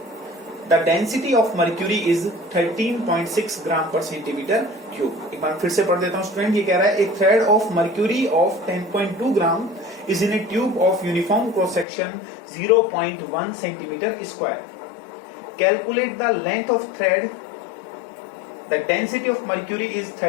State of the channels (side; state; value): right; drops out; at 11.9 s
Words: The density of mercury is 13.6 ग्राम पर सेंटीमीटर क्यूब। एक बार फिर से पढ़ देता हूं स्टूडेंट, ये कह रहा है एक thread of mercury of 10.2 gram is in A tube of uniform cross section 0.1 centimetre square. Calculate the length of thread. The density of mercury is